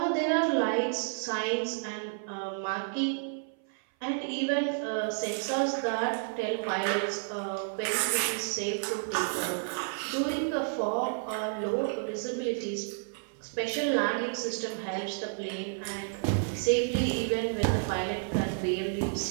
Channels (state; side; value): silent; left; 55 dB below the other